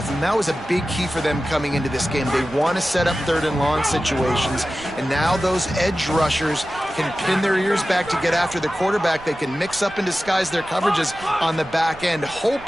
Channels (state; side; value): noise; right; rumble, 20 dB below the sound